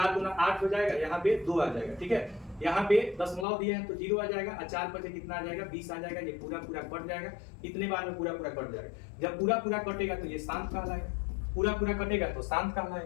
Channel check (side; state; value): right; drops out; at 3.5 s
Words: गुना 8 हो जाएगा, यहाँ पे 2 आ जाएगा, ठीक है। यहाँ पे दशमलव दिए हैं तो 0 आ जाएगा और 4 बचे कितना आ जाएगा? 20 आ जाएगा। ये पूरा पूरा कट जाएगा। इतने बार में पूरा पूरा कट जाएगा। जब पूरा पूरा कटेगा तो ये शांत कहलाएगा, पूरा पूरा कटेगा तो शांत